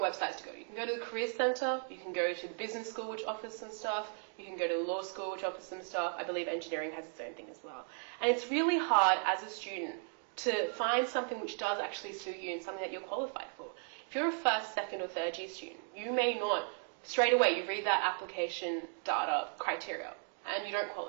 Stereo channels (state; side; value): silent; left; 54 dB below the other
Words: websites to go to. You can go to the Career Centre, you can go to the business school, which offers some stuff, you can go to the law school, which offers some stuff. I believe engineering has its own thing as well. And it's really hard as a student to find something which does actually suit you and something that you're qualified for. If you're a first, second or third year student, you may not, straight away you read that application data criteria and you don't